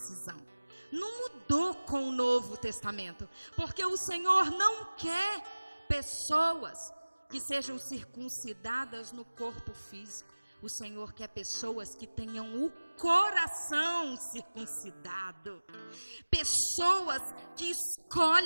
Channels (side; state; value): both; inverted; correlation -1.00